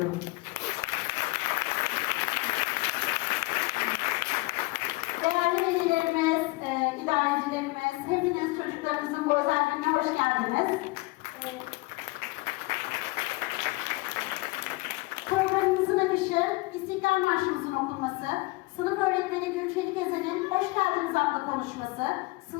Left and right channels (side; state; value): right; quieter; 22.6 dB